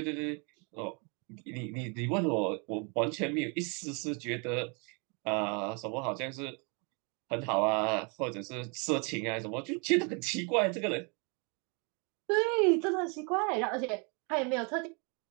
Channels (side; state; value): left; quieter; 34.2 dB